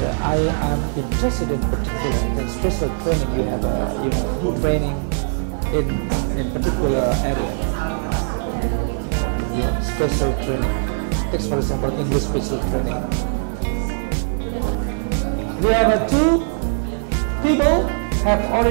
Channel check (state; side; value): silent; left; digital silence